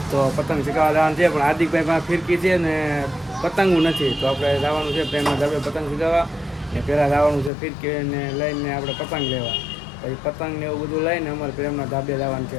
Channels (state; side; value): drops out; right; at 7.5 s